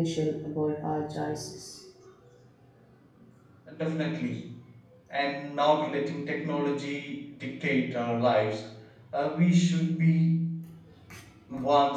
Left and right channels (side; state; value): both; identical; correlation 1.00